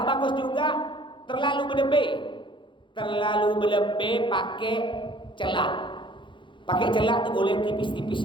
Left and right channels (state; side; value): late; right; 0.23 ms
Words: bagus juga terlalu berlebih pakai celak. Pakai celak itu boleh